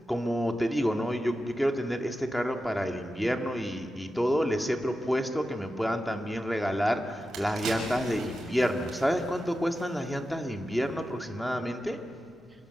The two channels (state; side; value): normal; both; correlation 0.91